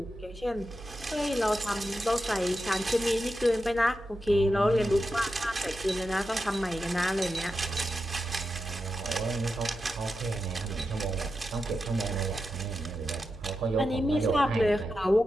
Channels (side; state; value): both; normal; correlation 0.89